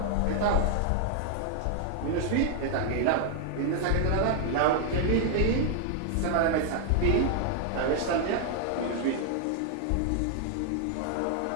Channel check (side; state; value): both; different; correlation -0.01